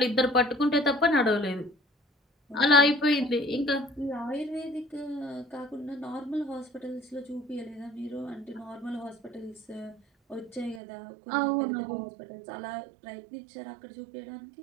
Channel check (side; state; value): left; drops out; at 10.8 s